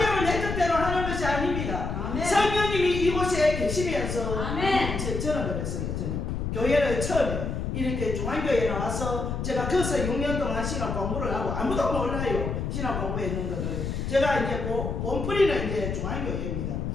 내 뜻대로 하는 것이 아닙니다. 아멘. 성령님이 이곳에 계시면서 아멘. 저는 그랬어요. 저는 교회를 처음에 이렇게 중앙교회에 나와서 제가 거기서 6년 동안 신학 공부를 하고 아무도 몰라요. 신학 공부했는 것을 제가 이제 본뿌리는 이제 중앙교회입니다.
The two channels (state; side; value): noise; left; rumble, 3 dB below the sound